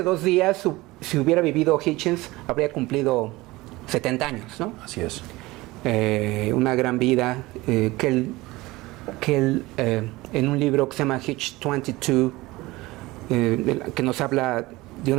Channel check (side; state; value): left; quieter; 20.3 dB